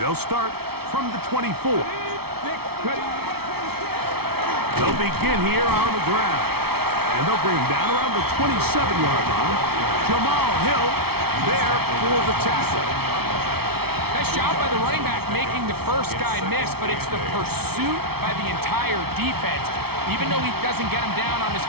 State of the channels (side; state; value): left; late; 0.95 ms